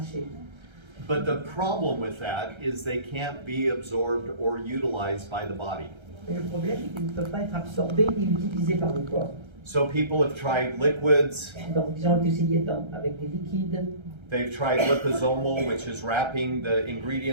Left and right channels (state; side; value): late; left; 1.3 ms